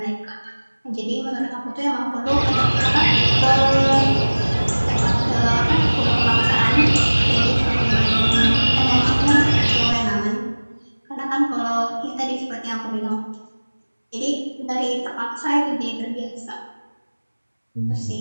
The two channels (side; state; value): both; inverted; correlation -1.00